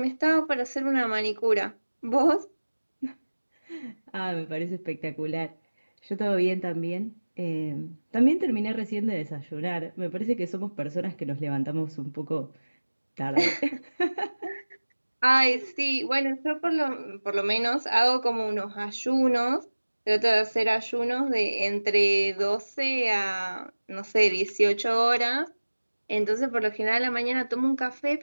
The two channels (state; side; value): inverted; both; correlation -1.00